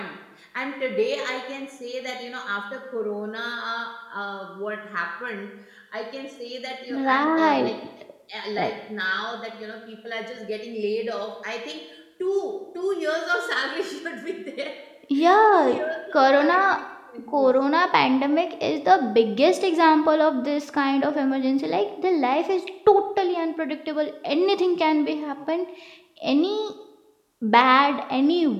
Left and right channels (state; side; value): identical; both; correlation 1.00